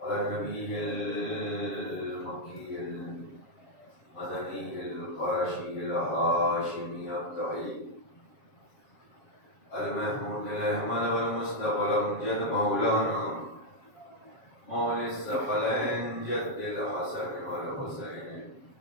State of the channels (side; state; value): right; late; 7.4 ms